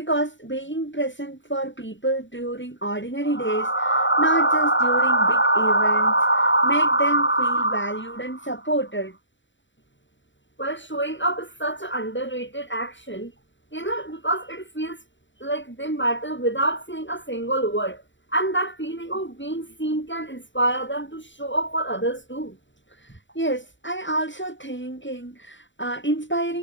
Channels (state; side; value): late; right; 0.54 ms